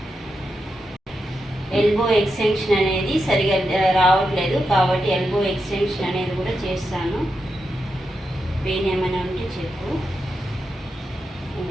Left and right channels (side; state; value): both; normal; correlation 0.87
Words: ఎల్బో ఎక్స్టెన్షన్ అనేది సరిగా రావట్లేదు కాబట్టి ఎల్బో ఎక్స్టెన్షన్ అనేది కూడా చేస్తాను. పెయిన్ ఏమైనా ఉంటే చెప్పు.